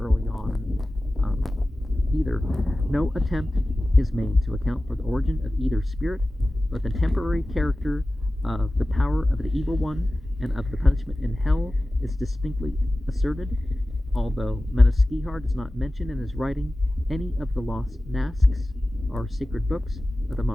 on either. No attempt is made to account for the origin of either spirit, but the temporary character of the power of the evil one and of the punishment in hell is distinctly asserted, although Madaskihar does not mention in his writing any of the lost Nasks, or sacred books of the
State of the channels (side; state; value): both; normal; correlation 0.96